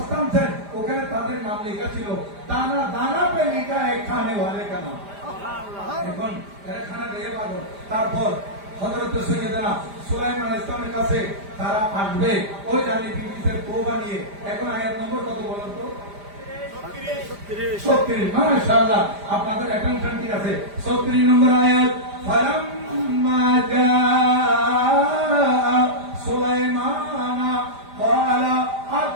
আনছেন ওখানে তাদের নাম লেখা ছিল, দানা দানা পে লিখা है खाने वाले का नाम। এখন এরা খানা খেয়ে পাগল। তারপর হযরত সৈয়দনা সুলাইমান ইসলামের কাছে তারা আসবে ওই রানী বিলকিসের তওবা নিয়ে। এখন আয়াত নম্বর কত বলেন তো? 36। মাশাআল্লাহ, আপনাদের অ্যাটেনশন ঠিক আছে। 36 নম্বর আয়াত। ফালাম্মা জাআ সুলাইমানা ক্বালা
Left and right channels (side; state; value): left; late; 5.0 ms